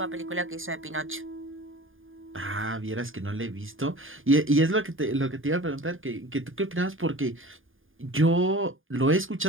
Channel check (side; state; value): left; late; 0.59 ms